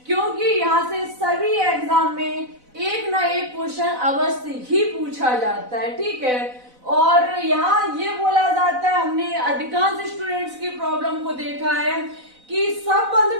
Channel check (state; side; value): late; left; 4.0 ms